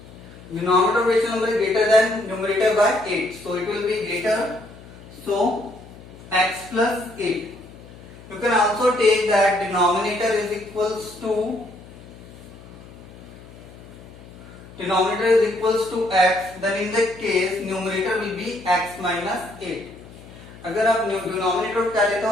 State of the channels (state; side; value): noise; left; hum, 19 dB below the sound